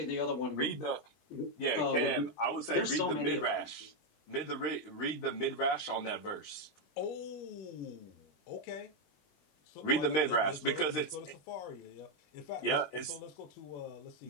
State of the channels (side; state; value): right; late; 20 ms